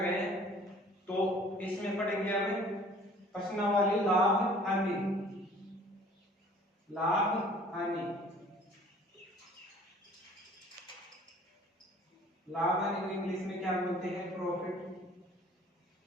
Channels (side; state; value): both; normal; correlation 0.52